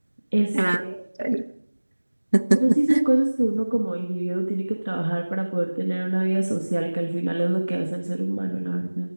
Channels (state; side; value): inverted; both; correlation -1.00